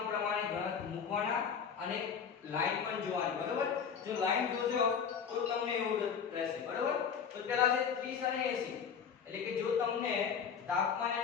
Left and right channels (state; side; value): quieter; right; 7.0 dB